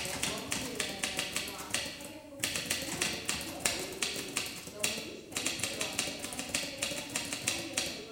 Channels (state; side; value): identical; both; correlation 1.00